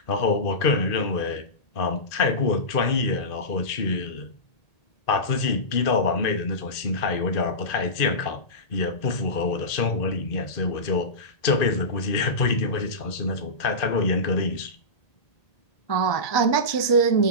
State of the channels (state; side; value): late; right; 1.8 ms